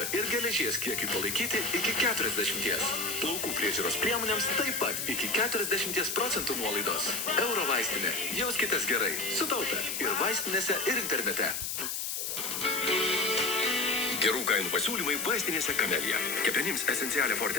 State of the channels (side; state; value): left; noise; hiss, 3 dB below the sound